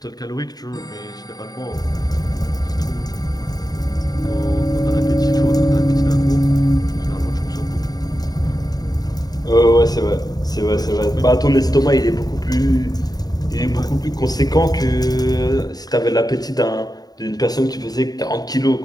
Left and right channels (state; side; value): late; right; 0.19 ms